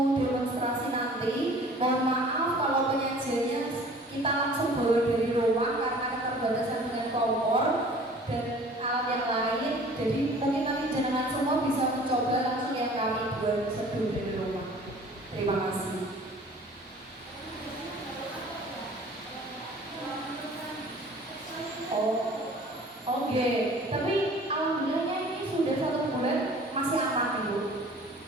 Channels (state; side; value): normal; both; correlation 0.48